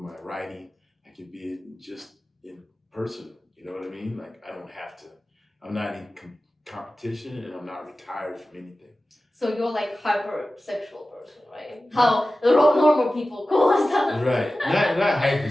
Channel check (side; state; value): both; normal; correlation 0.95